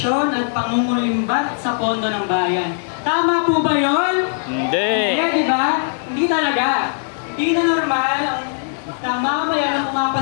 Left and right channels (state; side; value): silent; right; 66 dB below the other